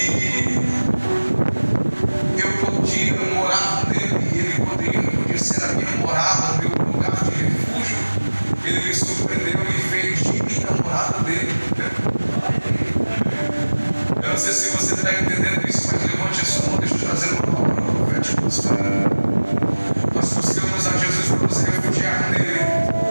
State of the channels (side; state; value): both; inverted; correlation -1.00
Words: eu podia morar nele e ele podia ser a minha morada, meu lugar de refúgio, ele me surpreendeu e fez de mim a morada dele. Eu não sei se você está entendendo isso, mas levante a sua mão, deixa eu trazer uma palavra profética para você. Nós buscamos a Jesus para nos refugiar nele